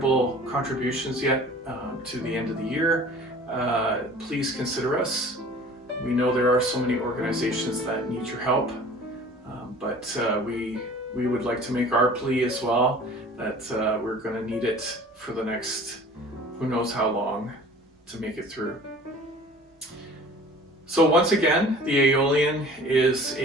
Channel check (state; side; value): normal; both; correlation 0.46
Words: contributions yet to the end of the year, please consider us. We know there are so many organizations that need your help, but we would like to make our plea as well that we're going to need it for the next who knows how long to make it through. So once again, the Aeolian is